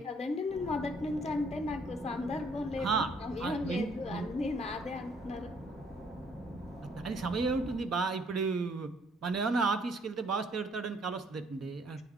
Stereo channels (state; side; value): normal; both; correlation 0.64